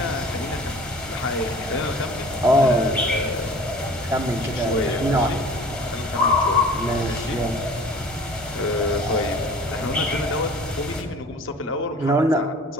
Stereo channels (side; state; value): both; normal; correlation 0.45